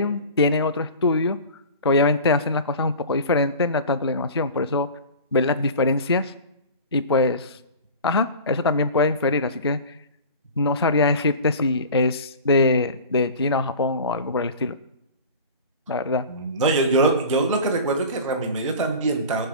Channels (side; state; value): both; inverted; correlation -0.37